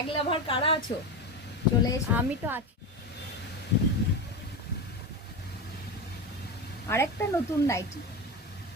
লাভার কারা আছো? চলে এসো। আমি তো আছি। আরেকটা নতুন নাইটি,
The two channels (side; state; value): both; normal; correlation 0.20